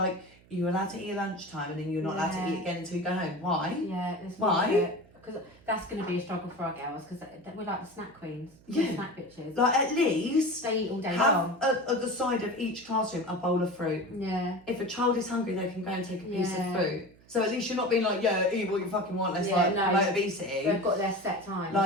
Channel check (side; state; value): right; noise; hum, 26 dB below the sound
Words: you're allowed to eat at lunchtime and then you're not allowed to eat again until you go home. Why? Yeah, why? Because that's going to be a struggle for our girls because we're like the snack queens, snack bitches. Like, at least they eat all day long. Have at the side of each classroom a bowl of fruit. Yeah. If a child is hungry, they can go and take a piece of fruit. So at least you're not being like, eat what you fucking want. Let's promote obesity. They've got their set time.